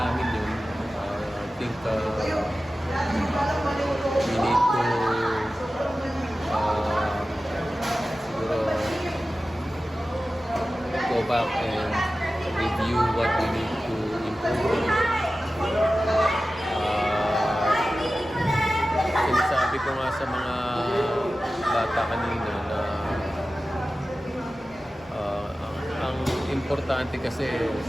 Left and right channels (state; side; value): normal; both; correlation 0.95